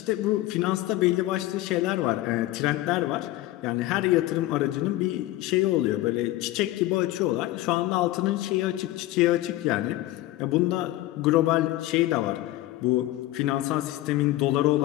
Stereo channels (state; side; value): quieter; right; 16.4 dB